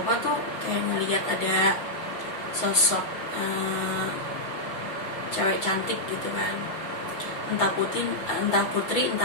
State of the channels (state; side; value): late; right; 6.0 ms